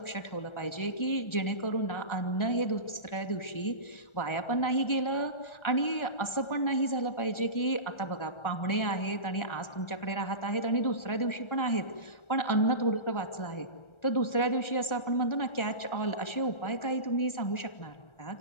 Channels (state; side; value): late; right; 1.4 ms